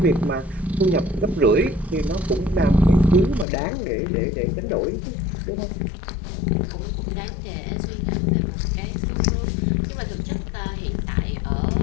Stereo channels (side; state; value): right; drops out; at 3.5 s